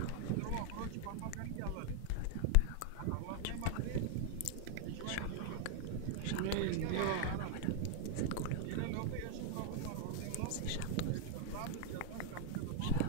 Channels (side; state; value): both; different; correlation 0.00